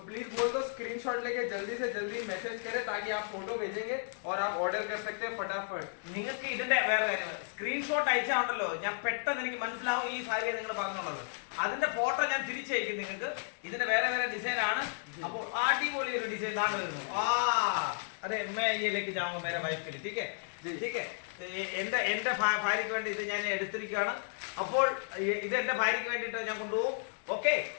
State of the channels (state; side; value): silent; right; digital silence